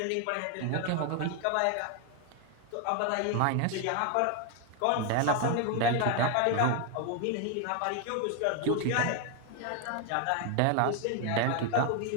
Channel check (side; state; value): both; different; correlation 0.01